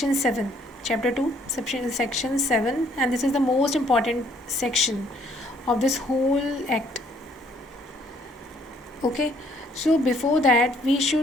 7, chapter 2, section 7, and this is the most important section of this whole act. Okay, so before that we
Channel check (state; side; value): normal; both; correlation 0.64